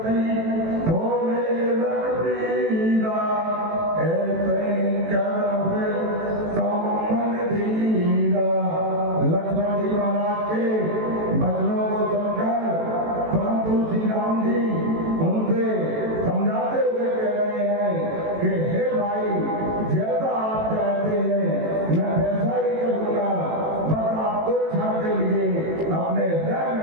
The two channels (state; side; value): late; left; 18 ms